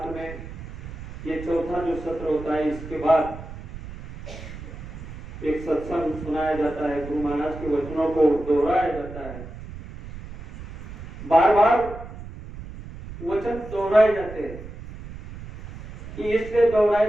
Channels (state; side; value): noise; right; rumble, 12 dB below the sound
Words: में ये चौथा जो सत्र होता है इसके बाद एक सत्संग सुनाया जाता है। गुरु महाराज के वचनों को दोहराया जाता है। बार बार वचन दोहराए जाते हैं कि इसलिए